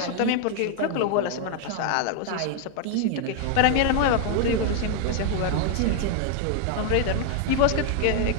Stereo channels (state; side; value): different; both; correlation 0.00